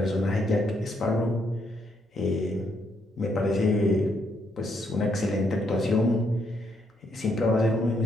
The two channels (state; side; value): normal; both; correlation 0.75